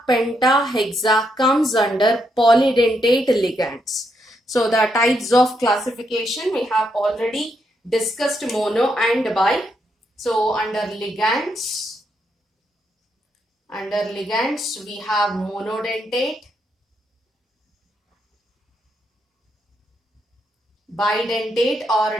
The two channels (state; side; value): normal; both; correlation 0.79